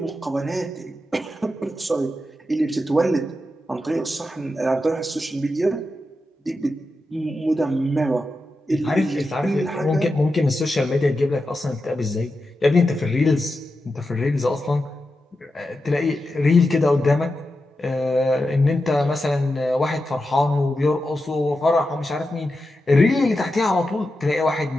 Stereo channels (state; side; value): normal; both; correlation 0.89